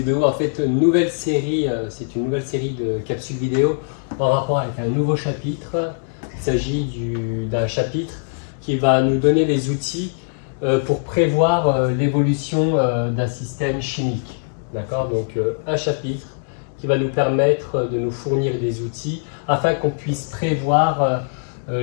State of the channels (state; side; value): silent; right; digital silence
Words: en fait une nouvelle série, c'est une nouvelle série de capsules vidéo en rapport avec un nouveau chapitre. Il s'agit d'un chapitre qui va nous donner les outils pour prévoir l'évolution d'un système chimique. D'accord? Donc un chapitre qui va nous permettre de nous fournir des outils afin qu'on puisse prévoir